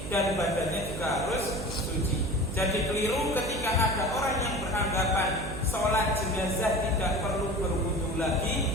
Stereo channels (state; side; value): noise; right; hum, 7 dB below the sound